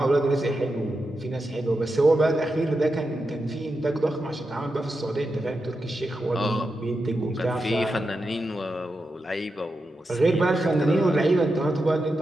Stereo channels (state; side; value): normal; both; correlation 0.88